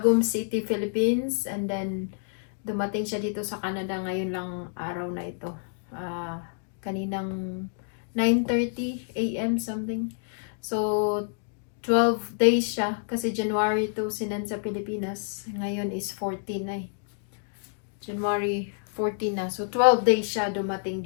City, Philippines. And then, dumating siya dito sa Canada ngayon lang araw na ito. Kaninang 9:30 a.m. something. So, 12 days siya kasi January 2 sinend sa Pilipinas. Ngayon is 14 na eh. January 14 na. So, 12 days siya dumating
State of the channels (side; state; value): right; silent; digital silence